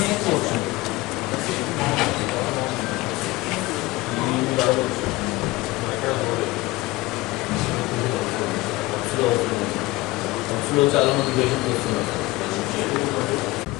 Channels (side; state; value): right; quieter; 20.0 dB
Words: చాలా మంది పేషెంట్స్ వస్తున్నారు.